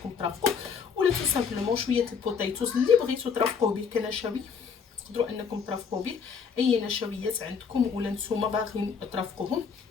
ترافقوه، ولا تو سامبلومون شويه البوتيتوز اللي بغيتو ترافقوه به كنشوي، تقدروا انكم ترافقوا به اي نشويات عندكم ولا نتوما باغيين ترافقوهم.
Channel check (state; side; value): quieter; right; 6.2 dB